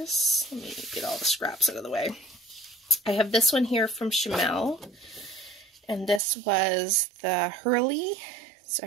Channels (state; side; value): drops out; left; at 6.2 s